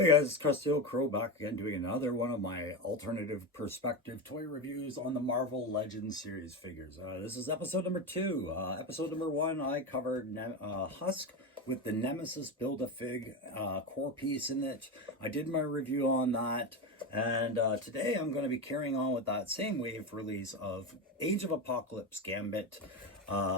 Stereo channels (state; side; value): normal; both; correlation 0.17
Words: guys, it's Krusty Old Crow back again doing another one of my alternative perspective toy reviews on the Marvel Legends series figures. This is episode number 2. Episode number 1, I covered Husk with the Nemesis Build-A-Fig core piece in it. I did my review on that, and today I'm going to be carrying on with that same wave release of Age of Apocalypse Gambit.